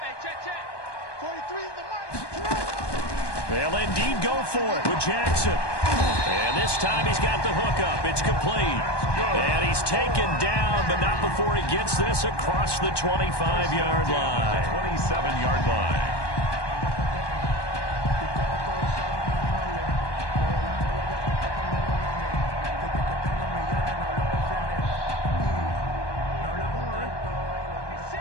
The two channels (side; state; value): right; late; 1.2 ms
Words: They'll indeed go for it with Jackson. And this time he's got the hookup. It's complete. And he's taken down, but not before he gets this across the 25-yard line. 27-yard line.